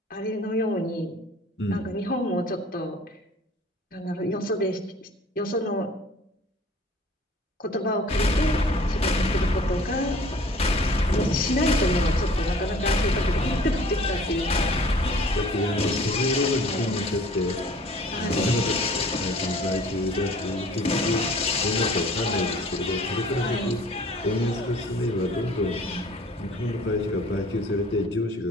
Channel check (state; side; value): normal; both; correlation 0.50